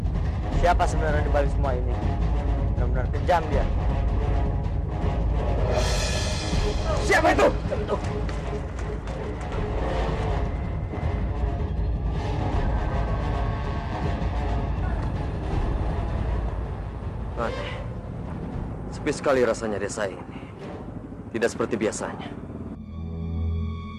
Siapa sebenarnya di balik semua ini? Benar-benar kejam dia. Siapa itu? Aneh. Sepi sekali rasanya desa ini. Tidak seperti biasanya.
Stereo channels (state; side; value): identical; both; correlation 1.00